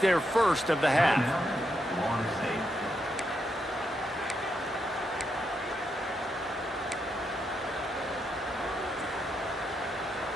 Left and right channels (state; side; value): normal; both; correlation 0.81